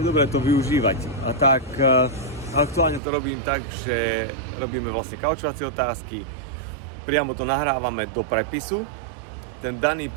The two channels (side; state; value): left; drops out; at 3.0 s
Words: dobré to využívať. A tak aktuálne to robím tak, že robíme vlastne kaučovacie otázky, priamo to nahrávame do prepisu. Ten daný